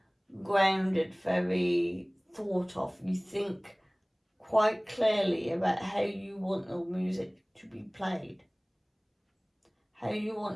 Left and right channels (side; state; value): both; identical; correlation 1.00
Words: grounded, very thought of. You think quite clearly about how you want your music to be played, how you